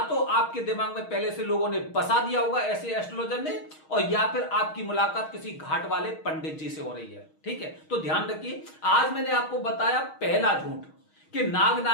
तो आपके दिमाग में पहले से लोगों ने बसा दिया होगा ऐसे एस्ट्रोलॉजर ने, और या फिर आपकी मुलाकात किसी घाट वाले पंडित जी से हो रही है। ठीक है, तो ध्यान रखिए, आज मैंने आपको बताया पहला झूठ कि नाग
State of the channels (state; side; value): late; right; 6.4 ms